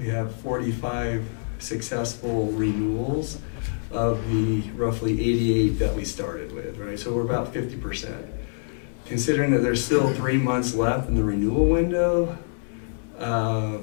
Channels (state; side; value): silent; right; digital silence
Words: have 45 successful renewals of the roughly 88 that we started with, right? So we're about 50%. Considering that there's still 3 months left in the renewal window, I